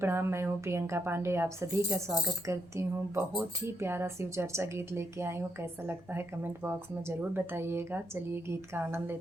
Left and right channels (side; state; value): left; noise; rumble, 27 dB below the sound